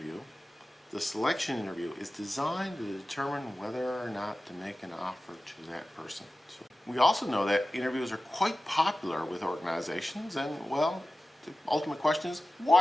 the selection interview, is designed to determine whether or not to make an offer to that person. So we also know that interviews are quite popular with organizations, and well, the ultimate question is,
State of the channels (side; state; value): both; normal; correlation 0.95